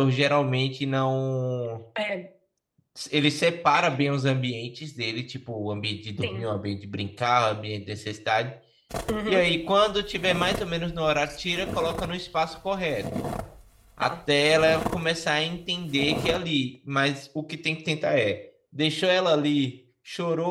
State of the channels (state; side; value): identical; both; correlation 1.00